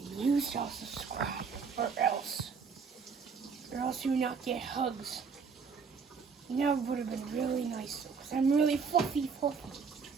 you shall subscribe, or else you will not get hugs. You know, it would have been really nice, because I'm really fluffy.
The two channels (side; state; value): left; quieter; 5.6 dB